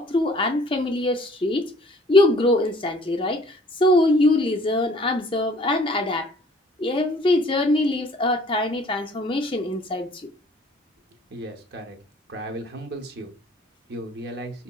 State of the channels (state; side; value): normal; both; correlation 0.55